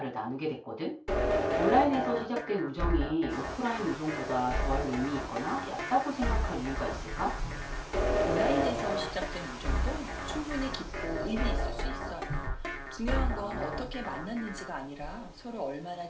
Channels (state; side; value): identical; both; correlation 1.00